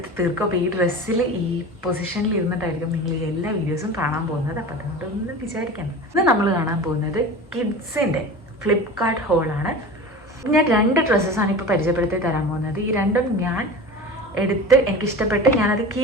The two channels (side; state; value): both; normal; correlation 0.33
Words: തീർക്കും. അപ്പോൾ ഈ ഡ്രസ്സിൽ ഈ പൊസിഷനിൽ ഇരുന്നിട്ടായിരിക്കും നിങ്ങൾ ഈ എല്ലാ വീഡിയോസും കാണാൻ പോകുന്നത്. അപ്പം അതുകൊണ്ടൊന്നും വിചാരിക്കണം. ഇന്ന് നമ്മൾ കാണാൻ പോകുന്നത് കിഡ്സിൻ്റെ ഫ്ലിപ്കാർട്ട് ഹോളാണ്. ഞാൻ 2 ഡ്രസ്സസാണ് ഇപ്പോൾ പരിചയപ്പെടുത്തി തരാൻ പോകുന്നത്. ഈ രണ്ടും ഞാൻ എടുത്ത് എനിക്കിഷ്ടപ്പെട്ട് ഞാനത്